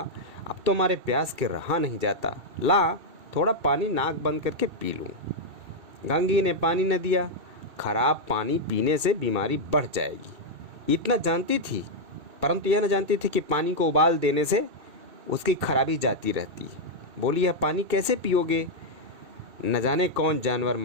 अब तो हमारे प्यास के रहा नहीं जाता, ला थोड़ा पानी नाक बंद करके पी लूं। गंगी ने पानी न दिया। खराब पानी पीने से बीमारी बढ़ जाएगी, इतना जानती थी, परंतु यह न जानती थी कि पानी को उबाल देने से उसकी खराबी जाती रहती। बोली, यह पानी कैसे पियोगे? न जाने कौन जानवर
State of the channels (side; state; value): left; late; 2.7 ms